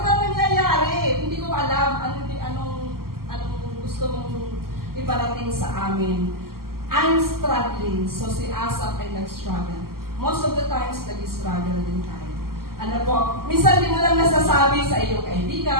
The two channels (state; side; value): late; left; 0.93 ms